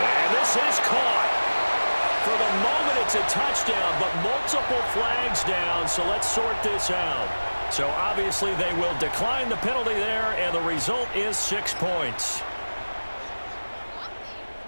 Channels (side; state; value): both; inverted; correlation -1.00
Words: And this is caught. For the moment, it's a touchdown, but multiple flags down, so let's sort this out. So obviously they will decline the penalty there, and the result is 6 points.